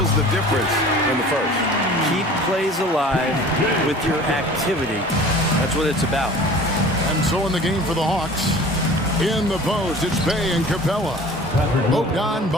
the difference in the first. Keep plays alive with your activity. That's what it's about. And so in the game for the Hawks, in the post, it's Bay and Capella.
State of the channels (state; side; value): normal; both; correlation 0.44